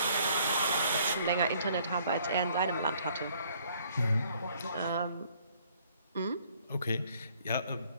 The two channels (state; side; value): inverted; both; correlation -0.62